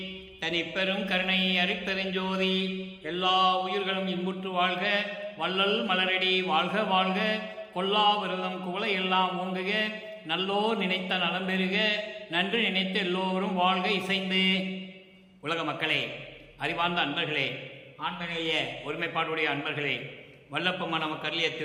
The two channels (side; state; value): both; identical; correlation 1.00